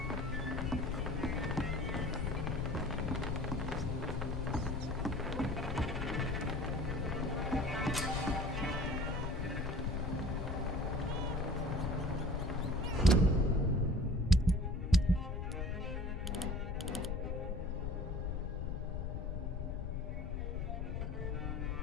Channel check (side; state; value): left; noise; rumble, 2 dB below the sound